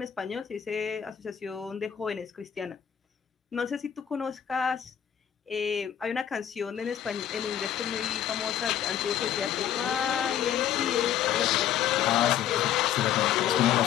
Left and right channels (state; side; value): quieter; right; 10.0 dB